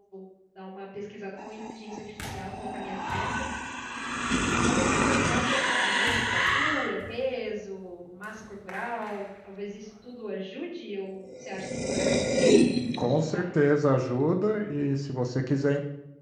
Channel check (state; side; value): identical; both; correlation 1.00